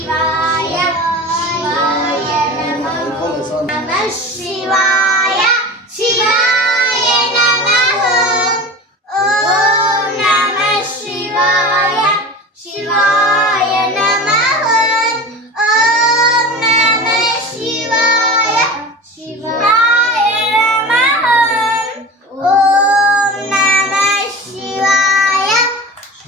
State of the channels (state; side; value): normal; both; correlation 0.33